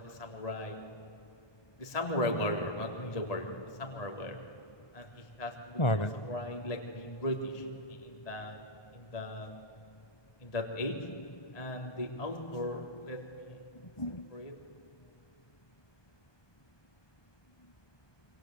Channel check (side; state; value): right; late; 1.2 ms